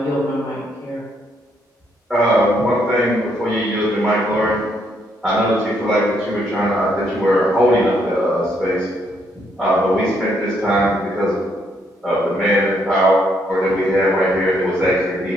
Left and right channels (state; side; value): normal; both; correlation 0.73